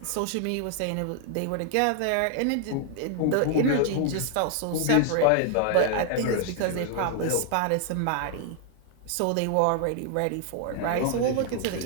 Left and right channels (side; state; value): both; different; correlation 0.00